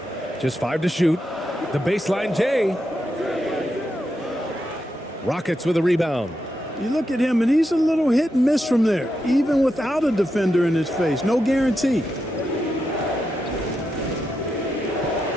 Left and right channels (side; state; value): both; normal; correlation 0.86